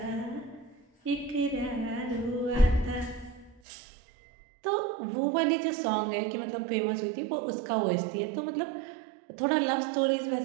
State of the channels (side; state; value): left; drops out; at 3.6 s